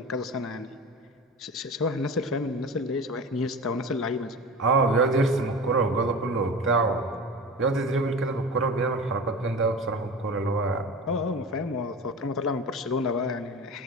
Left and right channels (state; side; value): normal; both; correlation 0.32